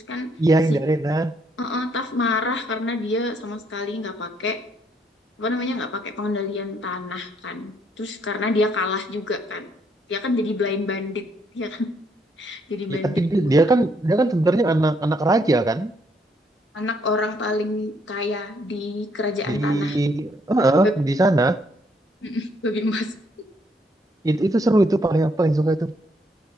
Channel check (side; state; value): both; normal; correlation 0.71